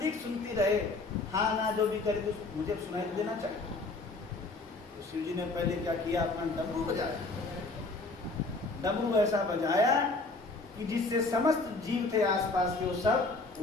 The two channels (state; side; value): quieter; right; 3.4 dB